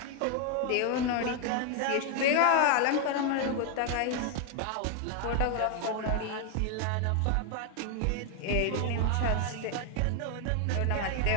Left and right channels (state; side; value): different; both; correlation 0.01